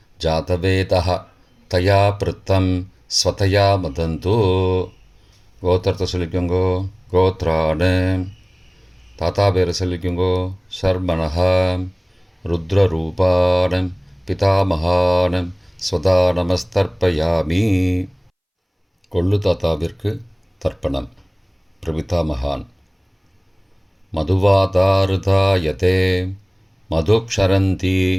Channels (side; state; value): both; identical; correlation 1.00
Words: जातवेदः तया पृत्तं स्वतया मदन्तु. கோத்திரத்தை சொல்லிக்கோங்கோ. கோத்ரானு. தாத்தா பேரை சொல்லிக்கோங்கோ. சர்மனஹா ருத்ரரூபானம் பிதாமகானம் ஸ்வதா நமஸ்தர்ப்பயாமி. கொள்ளு தாத்தாவிற்கு தர்ப்பணம். பிரபிதாமகான். மதுவாதாருதாயதே மதுக்ஷரந்தி